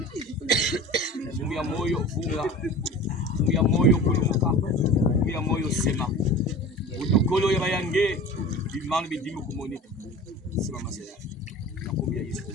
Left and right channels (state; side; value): normal; both; correlation 0.37